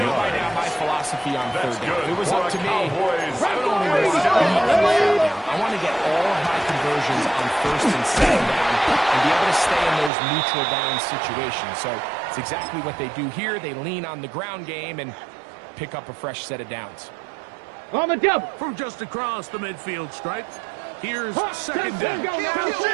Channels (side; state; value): left; drops out; at 10.1 s